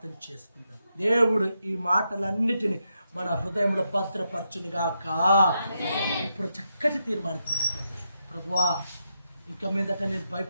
చేసుకుందాం. దేవుడు ఈ మాటలన్నిటిని మన హృదయంలో భద్రపరచునిగాక. ఇప్పుడు చక్కటి తీర్మానం తీసుకోండి. ప్రభువా, ఇక మీదట నేను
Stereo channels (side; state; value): both; inverted; correlation -0.84